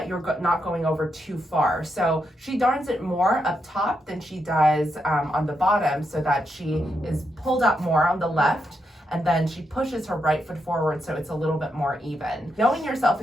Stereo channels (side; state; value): both; normal; correlation 0.82